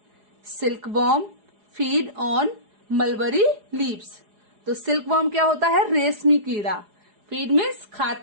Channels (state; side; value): late; left; 4.8 ms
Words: Silkworm feed on mulberry leaves. तो सिल्कवॉर्म क्या होता है? रेशमी कीड़ा। फीड मीन्स